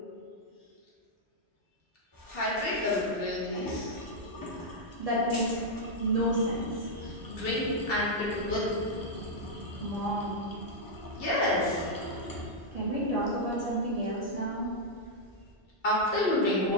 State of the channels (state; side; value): normal; both; correlation -0.03